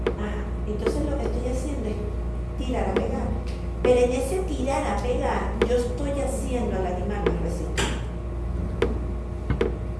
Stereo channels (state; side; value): identical; both; correlation 1.00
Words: Ajá, entonces lo que estoy haciendo es tirar a pegar. Pero en ese tirar a pegar, yo estoy haciendo al animal más resistente.